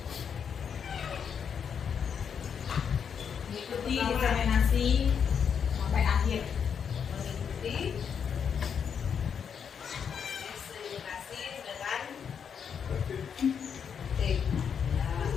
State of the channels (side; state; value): right; quieter; 7.2 dB